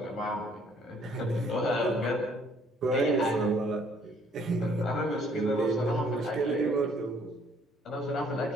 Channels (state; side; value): normal; both; correlation 0.62